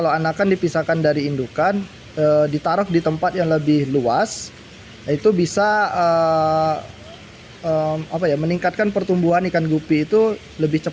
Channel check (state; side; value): identical; both; correlation 1.00